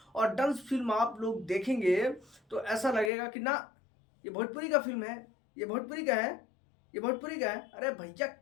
और डंस फिल्म आप लोग देखेंगे तो ऐसा लगेगा कि ना ये भोजपुरी का फिल्म है, ये भोजपुरी का है, ये भोजपुरी का है। अरे भैया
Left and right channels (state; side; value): drops out; right; at 3.1 s